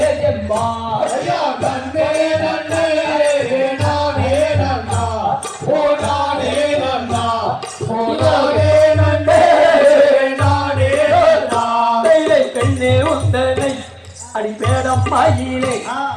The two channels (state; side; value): identical; both; correlation 1.00